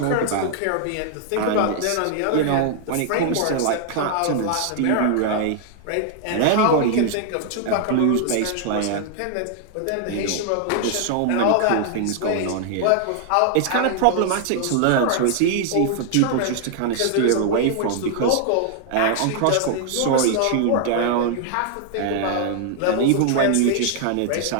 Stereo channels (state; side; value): different; both; correlation 0.00